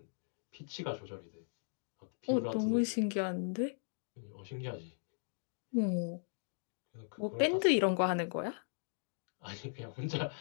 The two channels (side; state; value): right; silent; digital silence